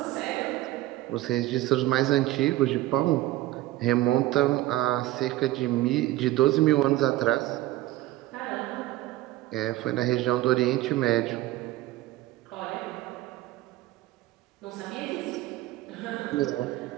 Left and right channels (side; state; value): left; quieter; 16.5 dB